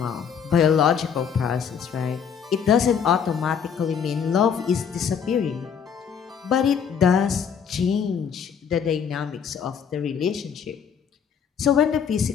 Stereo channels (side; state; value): right; quieter; 7.3 dB